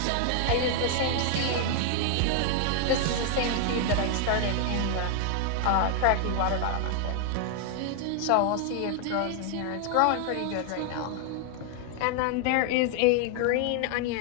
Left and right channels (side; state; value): both; different; correlation 0.00